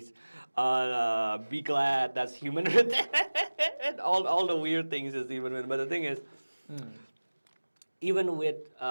be glad that's human written. all the weird things is human written. But the thing is, even with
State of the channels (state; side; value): inverted; both; correlation -1.00